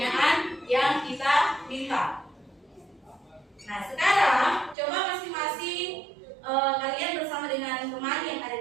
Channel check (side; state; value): left; drops out; at 4.8 s